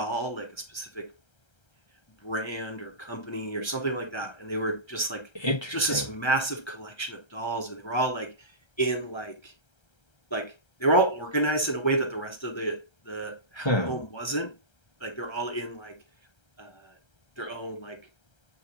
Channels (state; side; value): late; right; 1.3 ms